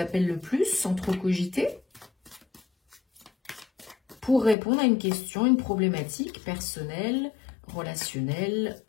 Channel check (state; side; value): drops out; right; at 4.5 s